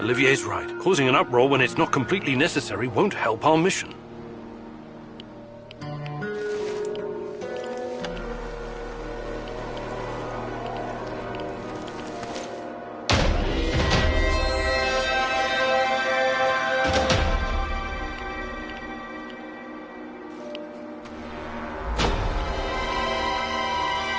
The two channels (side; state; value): both; identical; correlation 1.00